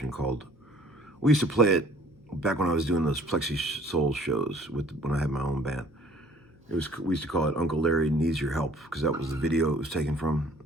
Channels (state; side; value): noise; left; hum, 28 dB below the sound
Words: called, we used to play it back when I was doing those Plexi Soul shows when I had my own band. We used to call it Uncle Larry Needs Your Help, because that was the video it was taken from.